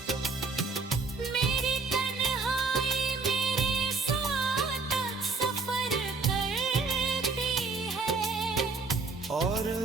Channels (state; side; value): quieter; left; 4.2 dB